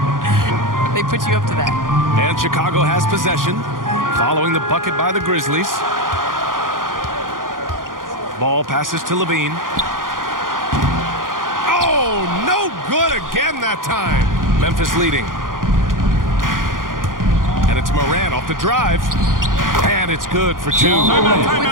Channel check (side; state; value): left; late; 0.90 ms